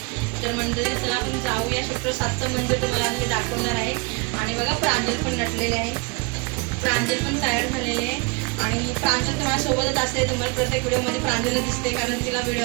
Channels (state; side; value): quieter; left; 29.4 dB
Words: तर मंडळी चला आपण जाऊया. क्षेत्र 7चं मंदिर तुम्हाला मी दाखवणार आहे. आणि बघा प्रांजल पण नटलेले आहे, प्रांजल पण तयार झालेले आहे. आणि प्रांजल तुम्हाला सोबतच असते, तुम्हाला प्रत्येक व्हिडिओमध्ये प्रांजल दिसते, कारण तिला